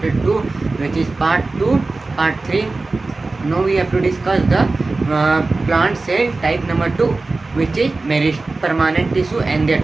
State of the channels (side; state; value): left; quieter; 3.5 dB